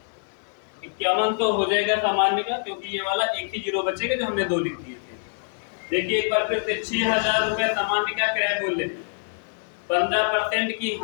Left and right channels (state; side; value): silent; right; 62 dB below the other